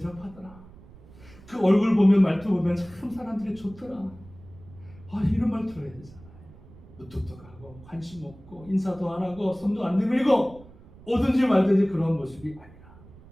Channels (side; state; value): right; noise; rumble, 22 dB below the sound